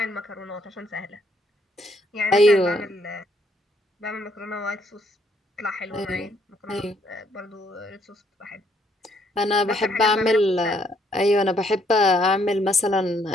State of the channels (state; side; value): normal; both; correlation 0.69